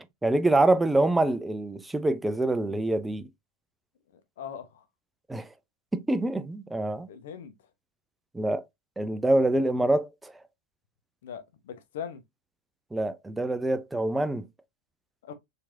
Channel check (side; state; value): both; normal; correlation 0.92